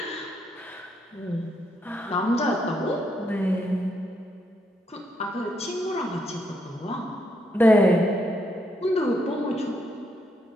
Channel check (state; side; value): normal; both; correlation 0.77